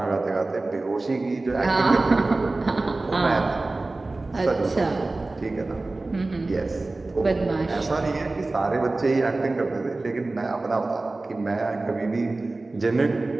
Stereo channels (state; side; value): quieter; left; 3.2 dB